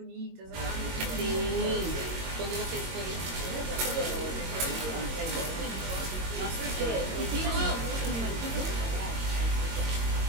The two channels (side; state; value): left; late; 22 ms